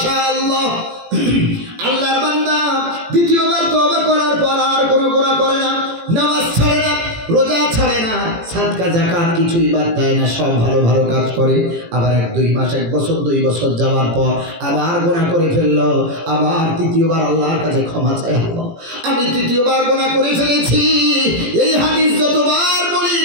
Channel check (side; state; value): left; late; 18 ms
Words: আল্লাহর বান্দা দ্বিতীয়বার তওবা করার পর আর কোনো গুনাহ করে না, নামাজ ছাড়ে না, রোজা ছাড়ে না, সাদকা যাকাত কিছুই বাদ দেয় না, সব ভালো ভালো কাজ করে। আবার 1-2 মাস, 1 বছর 2 বছর যাওয়ার পর আবার গুনাহ করে ফেললো, আবার তৃতীয়বার আল্লাহর কাছে ক্ষমা চায়, আল্লাহ আমি তৃতীয়বার গুনাহ করে ফেলেছি। এই হাদিস যতবার বলি,